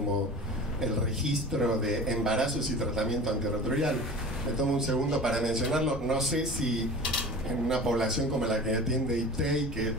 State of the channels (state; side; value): normal; both; correlation 0.37